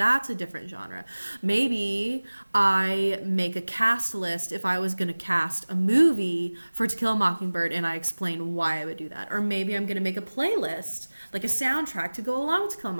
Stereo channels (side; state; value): both; inverted; correlation -1.00